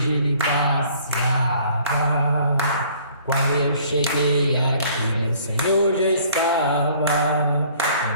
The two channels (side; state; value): both; inverted; correlation -0.56